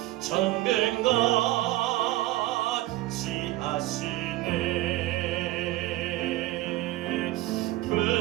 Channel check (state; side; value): quieter; left; 17.5 dB